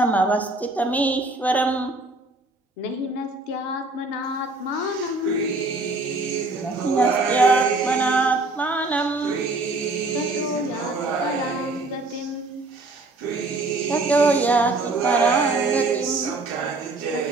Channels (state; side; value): quieter; left; 3.1 dB